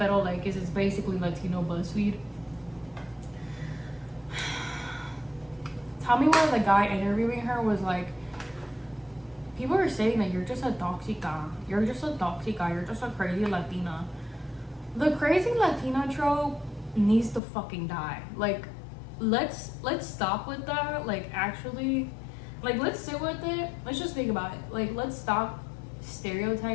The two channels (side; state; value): right; drops out; at 17.4 s